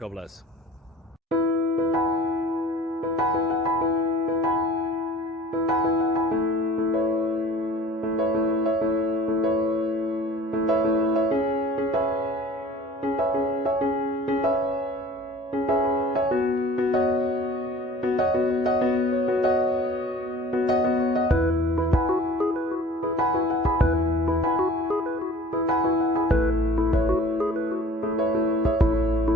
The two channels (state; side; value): normal; both; correlation 0.46